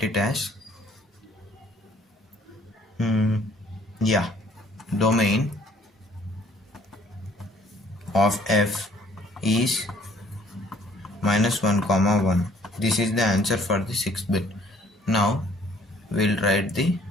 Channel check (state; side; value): normal; both; correlation 0.59